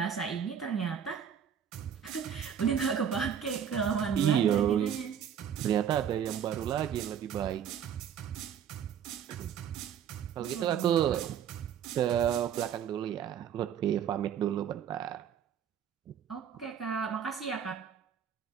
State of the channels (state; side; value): quieter; left; 8.5 dB